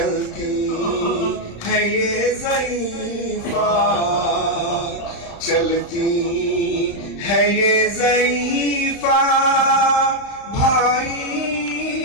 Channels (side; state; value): right; late; 35 ms